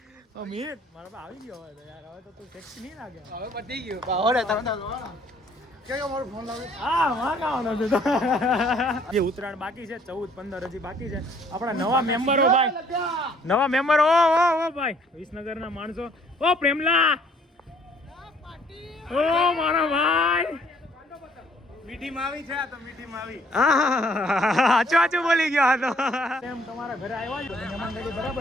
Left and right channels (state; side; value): normal; both; correlation 0.61